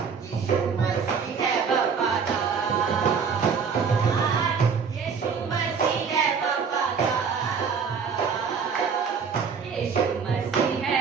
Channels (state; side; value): quieter; left; 6.0 dB